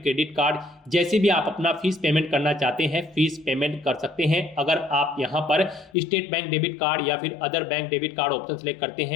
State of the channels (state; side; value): drops out; right; at 5.9 s